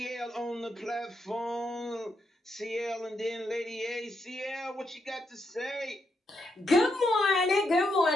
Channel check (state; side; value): normal; both; correlation 0.81